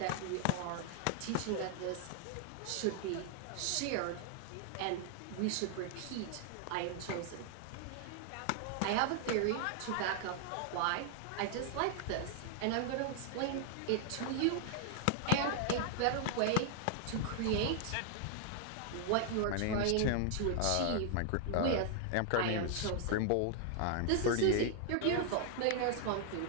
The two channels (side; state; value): both; different; correlation 0.00